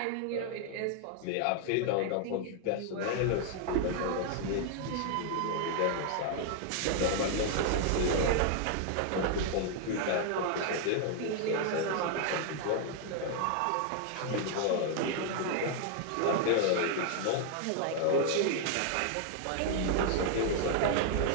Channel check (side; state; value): both; different; correlation 0.00